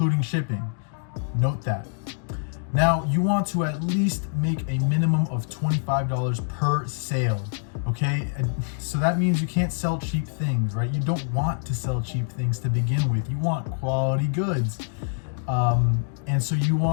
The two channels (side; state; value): right; silent; digital silence